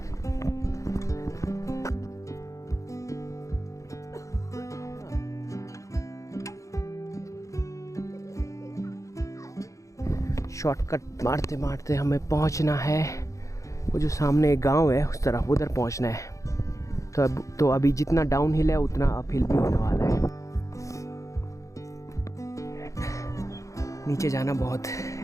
Shortcut मारते मारते हमें पहुंचना है वो जो सामने एक गांव है उस तरफ, उधर पहुंचना है। तो अभी जितना डाउन हिल है उतना अप हिल भी होने वाला है। नीचे जाना बहुत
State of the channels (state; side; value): late; right; 0.15 ms